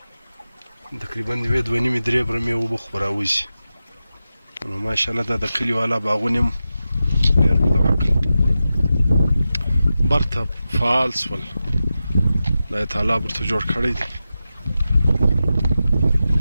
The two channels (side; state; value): both; inverted; correlation -0.92